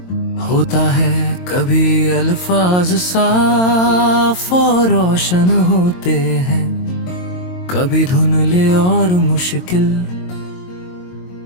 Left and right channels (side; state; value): right; late; 22 ms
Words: होता है। कभी अल्फाज साफ और रोशन होते हैं, कभी धुंधले और मुश्किल,